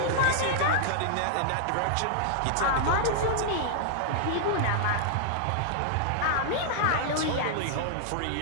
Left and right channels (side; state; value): both; different; correlation -0.01